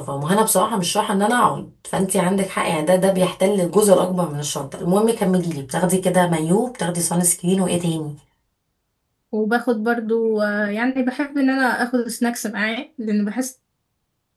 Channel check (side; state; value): both; identical; correlation 1.00